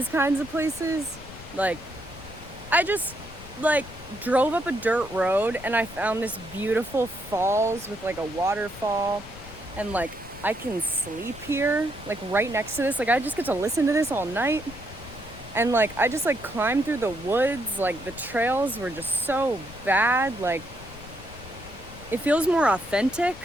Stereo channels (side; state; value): left; noise; rumble, 16 dB below the sound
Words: kinds of places, like, I just like drove up a dirt road and I found this beautiful falls with like a waterfall, and like I can sleep here, like right next to this. Like I just get to listen to this all night. And like I just like climbed through the woods. Like the trails were just so bad. Like it feels more authentic.